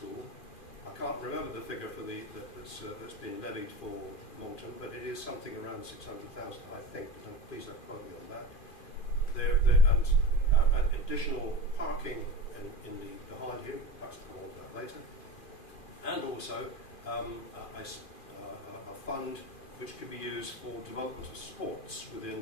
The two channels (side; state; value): right; late; 2.4 ms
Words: I can't remember the figure for that's been levied for Moulton, but it is something around 600,000, I think. Please don't quote me on that. And additional parking in the behind here, perhaps I'll come on to that later, and also a fund which could be used for development of sports